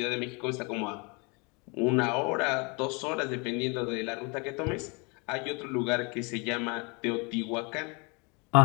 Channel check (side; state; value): right; quieter; 30.7 dB